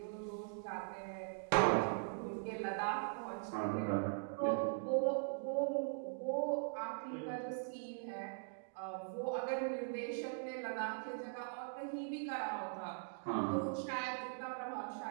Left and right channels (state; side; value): silent; left; digital silence